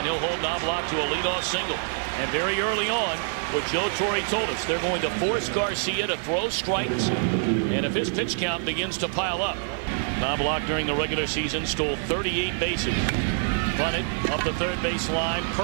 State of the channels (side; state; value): left; silent; 61 dB below the other